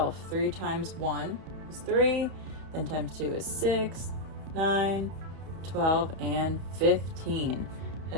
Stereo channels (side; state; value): left; late; 31 ms